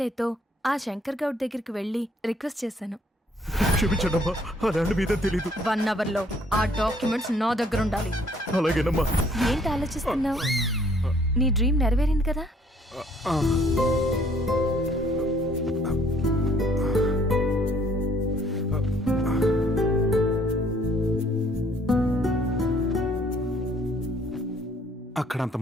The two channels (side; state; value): both; normal; correlation 0.62